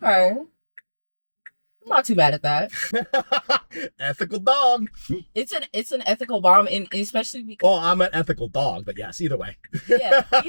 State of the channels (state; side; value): inverted; both; correlation -1.00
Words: I'm not too bad at that. Ethical dog. It's an ethical bomb, and especially because Well, I'm an ethical dog, but yes, either way. yeah,